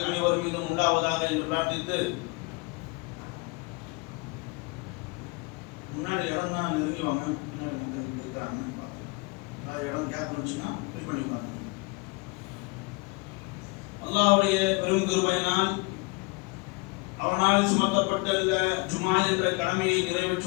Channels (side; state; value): right; quieter; 27.2 dB